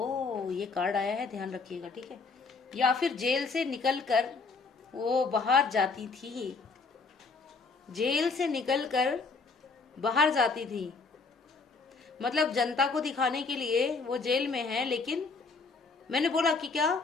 ये कार्ड आया है, ध्यान रखिएगा, ठीक है, या फिर जेल से निकल कर वो बाहर जाती थी, जेल से निकलकर बाहर जाती थी। मतलब जनता को दिखाने के लिए वो जेल में है, लेकिन मैंने बोला कि क्या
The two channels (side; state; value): right; quieter; 4.4 dB